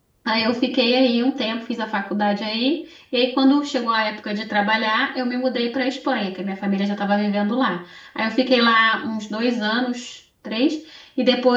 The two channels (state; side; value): identical; both; correlation 1.00